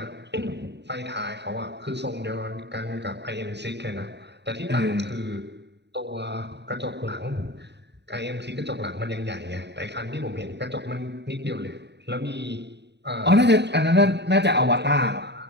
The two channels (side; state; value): left; late; 0.50 ms